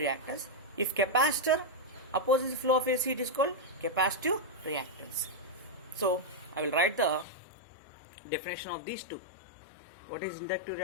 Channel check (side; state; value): right; drops out; at 7.2 s